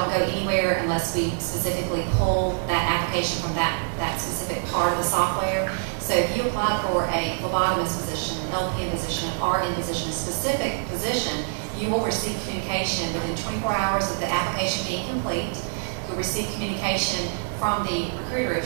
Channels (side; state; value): left; silent; digital silence